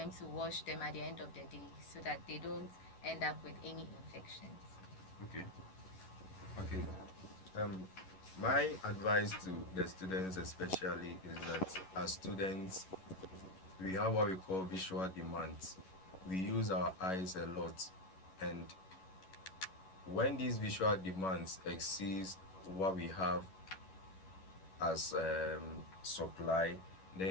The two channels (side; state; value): right; late; 11 ms